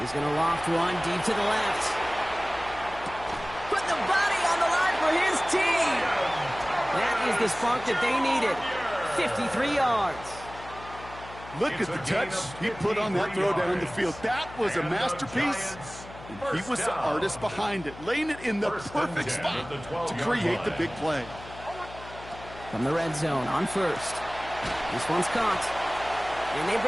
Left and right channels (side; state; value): left; noise; hum, 16 dB below the sound